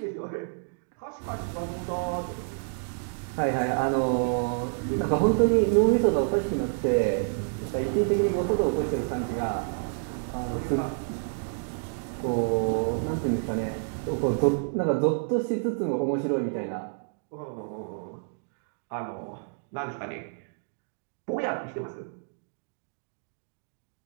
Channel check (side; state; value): left; silent; digital silence